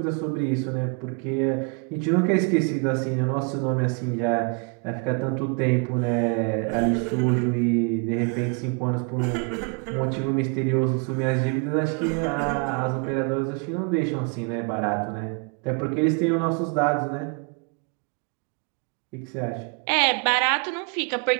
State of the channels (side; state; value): left; quieter; 36.0 dB